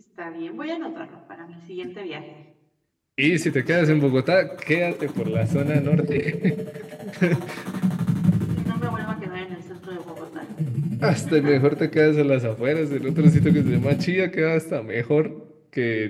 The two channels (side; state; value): both; identical; correlation 1.00